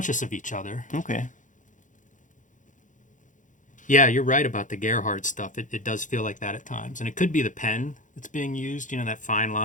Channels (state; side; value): late; right; 0.37 ms